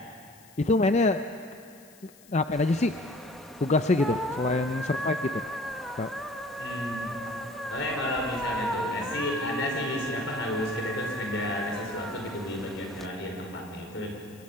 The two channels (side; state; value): left; noise; hiss, 25 dB below the sound